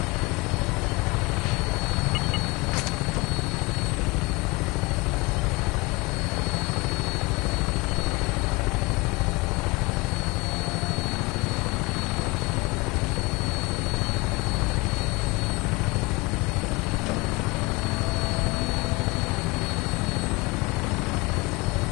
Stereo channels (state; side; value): quieter; right; 24.9 dB